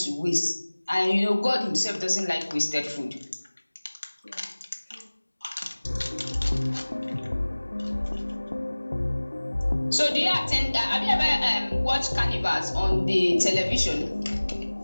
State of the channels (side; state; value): both; inverted; correlation -1.00